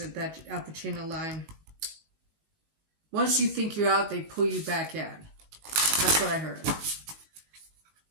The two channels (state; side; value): late; left; 18 ms